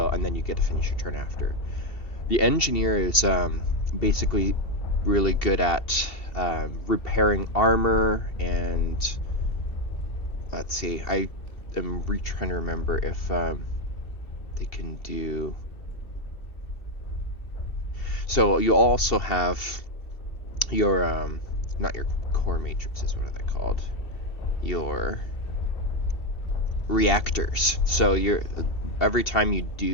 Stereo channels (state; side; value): late; right; 2.7 ms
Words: and then you get to finish your turn after. The engineer is basically really good at repairing armor, and let's see, I am trying to remember if they can do. So you also have your not your core matrices. What are they called? Your reactors. So you're every time you